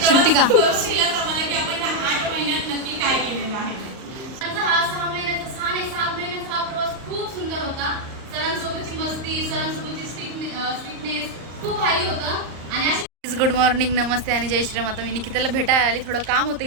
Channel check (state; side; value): late; left; 38 ms